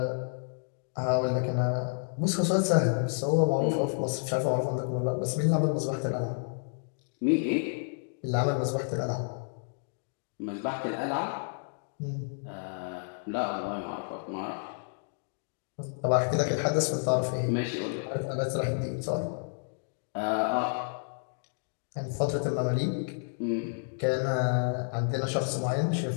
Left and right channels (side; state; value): right; silent; digital silence